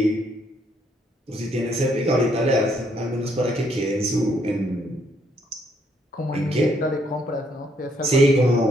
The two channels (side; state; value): both; normal; correlation 0.71